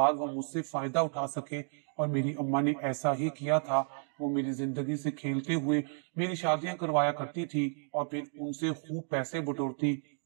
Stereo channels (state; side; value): silent; left; 56 dB below the other